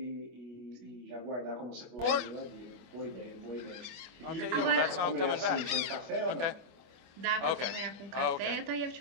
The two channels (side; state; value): left; late; 24 ms